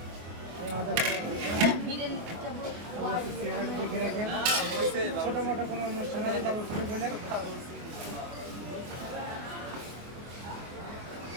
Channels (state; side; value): late; left; 24 ms